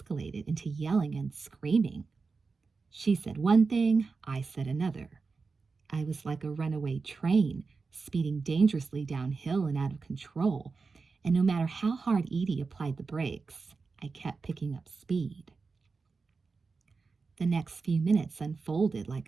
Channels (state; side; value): quieter; left; 4.5 dB